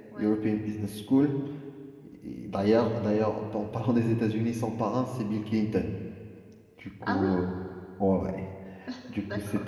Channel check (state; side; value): identical; both; correlation 1.00